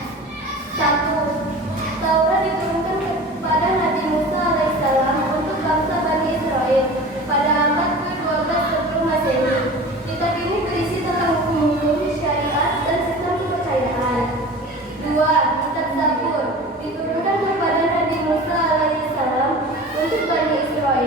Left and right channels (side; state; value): both; normal; correlation 0.37